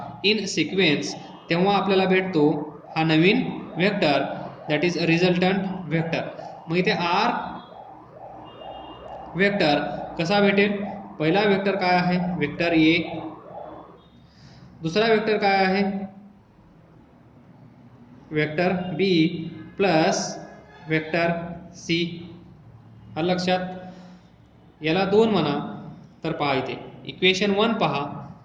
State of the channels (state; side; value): identical; both; correlation 1.00